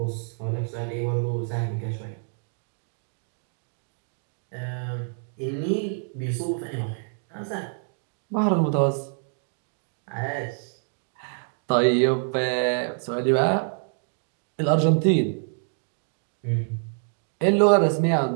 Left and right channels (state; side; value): silent; left; 59 dB below the other